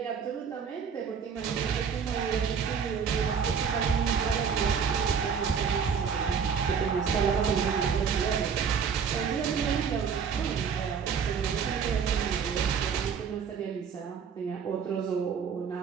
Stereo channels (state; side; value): quieter; left; 6.7 dB